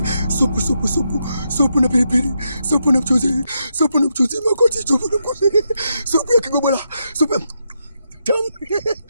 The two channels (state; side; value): inverted; both; correlation -0.82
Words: Supu na pilipili, supu na mchuzi Makoti, supu ya Kigobola, tamu.